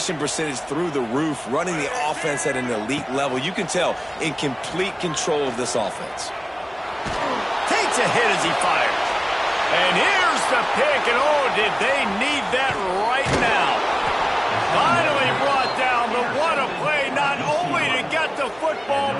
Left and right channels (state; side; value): identical; both; correlation 1.00